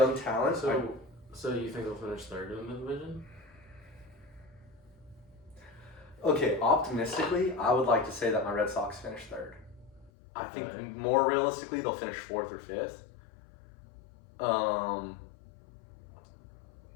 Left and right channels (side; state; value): right; drops out; at 10.1 s